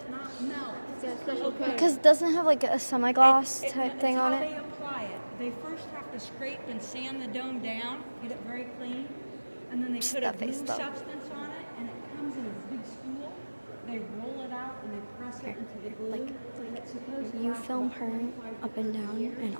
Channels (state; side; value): inverted; both; correlation -1.00